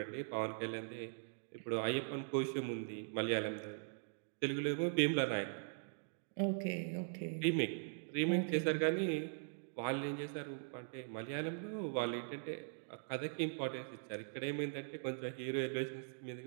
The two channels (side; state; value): left; silent; digital silence